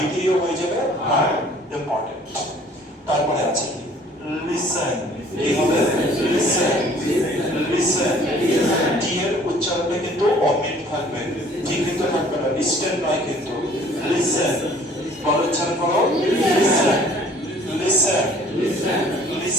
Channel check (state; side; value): normal; both; correlation 0.54